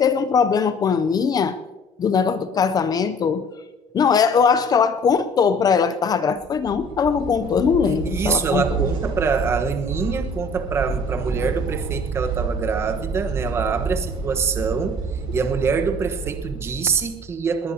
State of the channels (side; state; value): both; normal; correlation 0.51